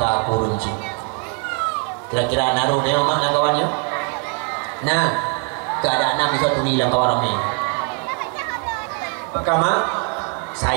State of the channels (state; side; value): quieter; left; 36.6 dB